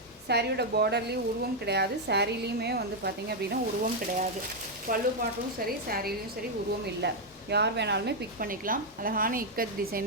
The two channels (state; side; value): normal; both; correlation 0.00